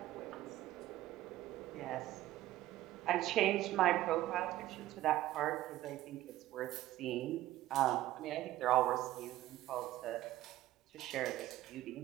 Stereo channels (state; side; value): quieter; left; 14.9 dB